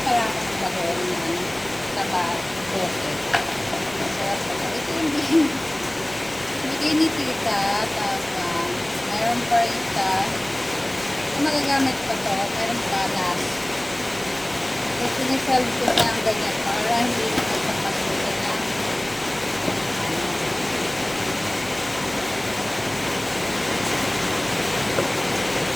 pala ako ng bagoong yan. Taba, bote. Masarap pala. Ito yung bigay ni tita. Tapos, mayroon pa rin ita. Kung magagamit pa to, mayroon pa last. So, sinisalve ko na ang ganyan para hindi na magpapasulit na.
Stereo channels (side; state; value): right; noise; rumble, 23 dB below the sound